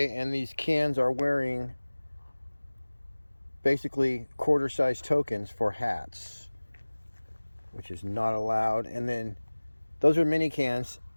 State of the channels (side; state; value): both; inverted; correlation -1.00